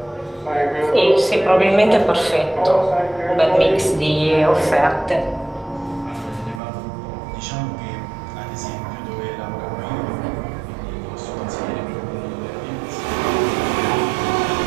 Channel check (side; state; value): left; drops out; at 6.6 s